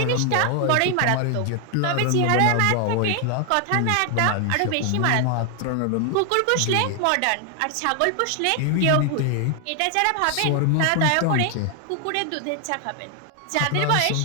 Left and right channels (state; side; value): different; both; correlation 0.00